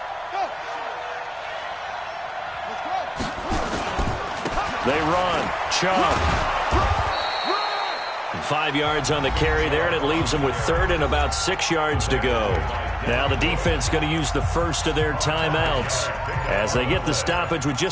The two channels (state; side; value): identical; both; correlation 1.00